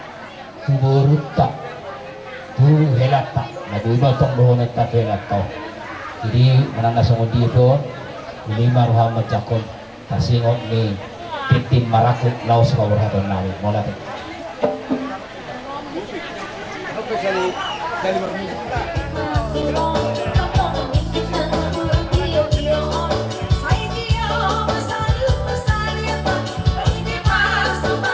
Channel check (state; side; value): identical; both; correlation 1.00